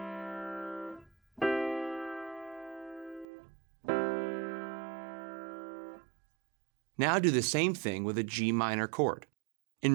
Now do the same thing with a G minor chord.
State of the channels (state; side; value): drops out; left; at 3.2 s